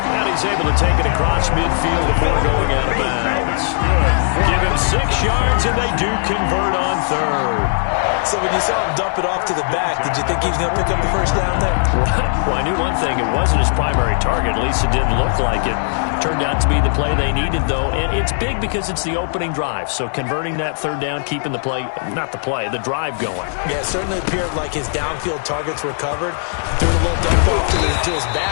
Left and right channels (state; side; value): silent; right; 67 dB below the other